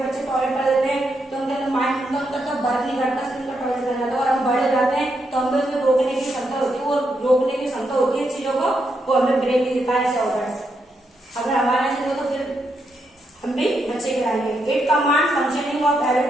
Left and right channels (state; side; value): normal; both; correlation 0.81